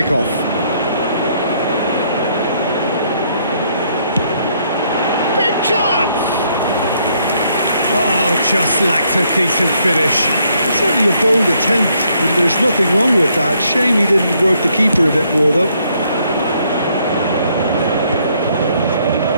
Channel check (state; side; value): inverted; both; correlation -0.70